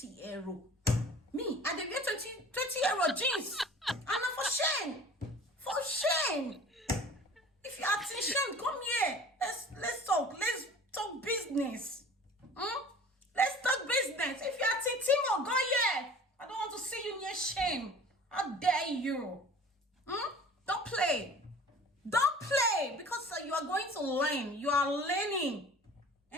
euro. Me, I dey get 20 euro jeans. And not for Shein. For Shein. If you are in Shein, come here. Let's talk. Let's talk business. Let's talk business. If you are in Temu, go here. I don't want to see you near Shein. How dare you? Don't play. Don't play. Because you are going to learn. You are learning.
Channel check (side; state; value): both; normal; correlation 0.44